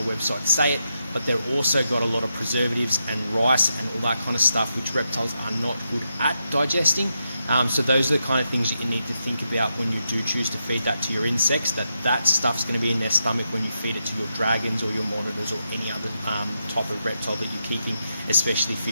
websites say it, but they've also got a lot of preservatives and rice and all that kind of stuff which reptiles are not good at digesting. So those are the kind of things that you need to think about when you do choose to feed that to your insects, that stuff's going to be in their stomach when you feed it to your dragons or your monitors or any other type of reptile that you're keeping, especially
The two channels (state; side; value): inverted; both; correlation -0.85